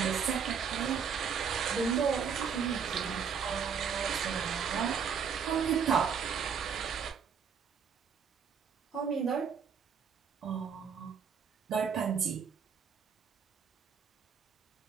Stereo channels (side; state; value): left; quieter; 6.7 dB